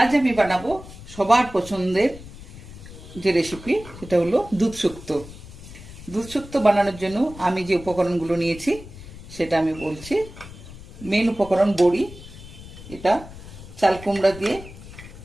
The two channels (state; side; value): noise; left; rumble, 16 dB below the sound